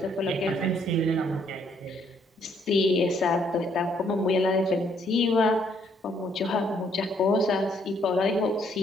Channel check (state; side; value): normal; both; correlation 0.68